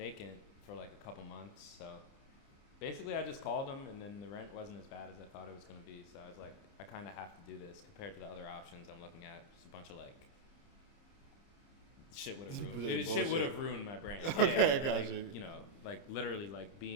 for like a couple months. So basically I just called them, and then the rent wasn't as bad as I thought it was going to be. So I was like, I kind of have to do this compared to the other options I'm looking at. Just a bunch of like shit would have ruined. Shit would have ruined my brand. Okay, I got like, you. You know, like literally like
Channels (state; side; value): late; right; 30 ms